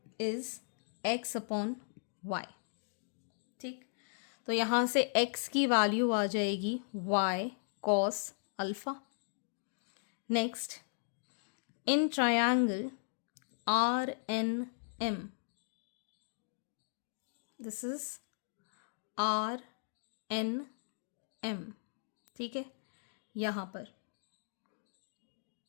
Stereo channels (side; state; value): right; silent; digital silence